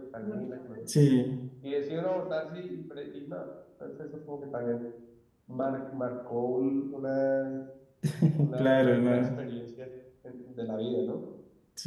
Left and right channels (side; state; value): both; identical; correlation 1.00